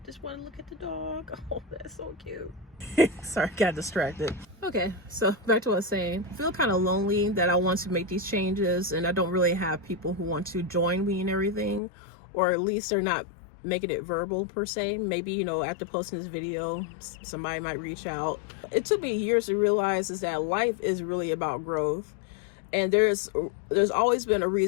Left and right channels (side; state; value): right; drops out; at 11.8 s